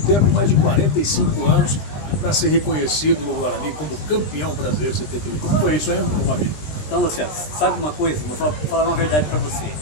mais de 45 anos, para ser reconhecido no Guarani como campeão brasileiro 78. Como foi isso, hein, Mavilho? Então, Luciano, sabe uma coisa? Vou falar uma verdade para você.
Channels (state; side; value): late; right; 20 ms